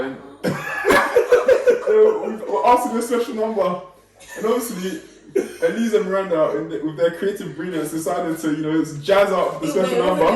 so we were asked to do a special number, and obviously Elise and Miranda, with their creative brilliance, decided to jazz up the special number.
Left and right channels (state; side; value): identical; both; correlation 1.00